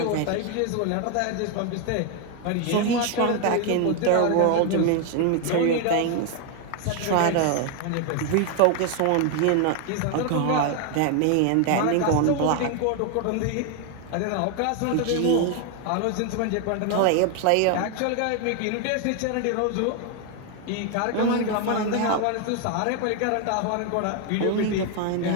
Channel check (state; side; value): different; both; correlation 0.01